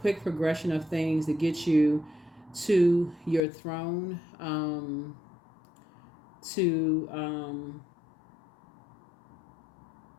progression of things to get you to your throne,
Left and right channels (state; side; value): drops out; right; at 3.4 s